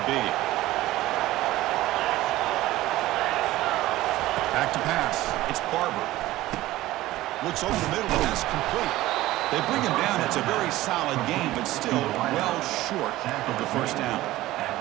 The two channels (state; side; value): quieter; left; 16.6 dB